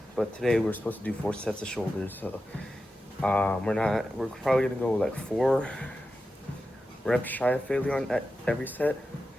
but today we're supposed to do 4 sets of shoulders. So we're probably gonna go like 4 reps shy of failure on every set.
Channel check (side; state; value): both; normal; correlation 0.91